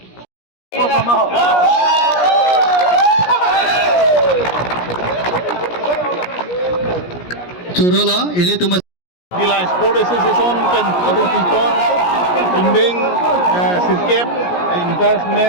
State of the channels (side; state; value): right; late; 17 ms